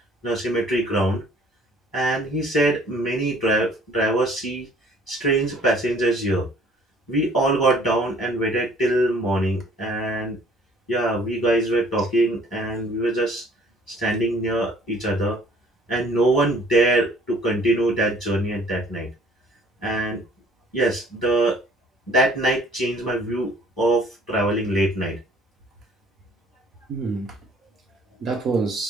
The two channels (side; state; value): both; normal; correlation 0.56